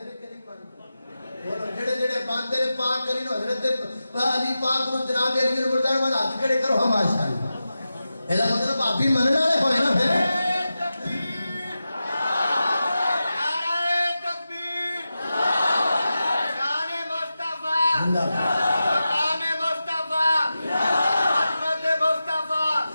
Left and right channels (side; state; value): both; inverted; correlation -0.92